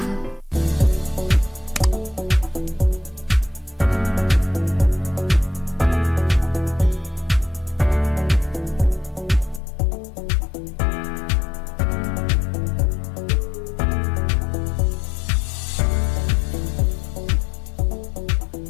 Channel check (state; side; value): drops out; right; at 9.6 s